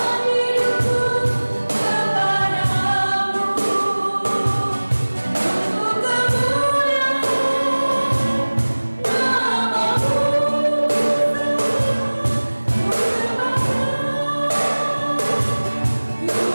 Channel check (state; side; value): inverted; both; correlation -1.00